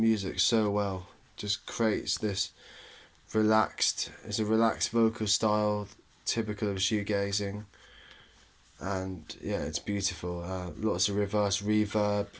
so well. Just creates this it's a relaxed vocal style typical of shoegazing, and yeah, it's beautiful. Lots of reverse reverb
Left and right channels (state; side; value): identical; both; correlation 1.00